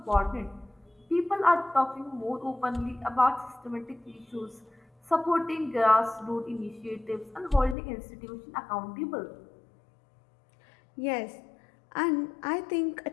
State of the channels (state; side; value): drops out; right; at 7.8 s